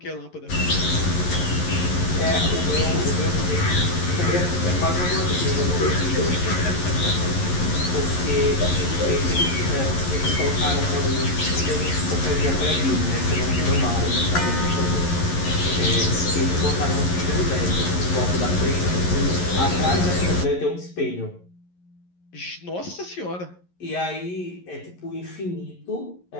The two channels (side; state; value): right; late; 11 ms